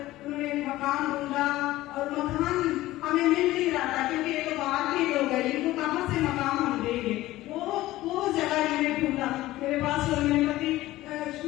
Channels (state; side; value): quieter; right; 16.6 dB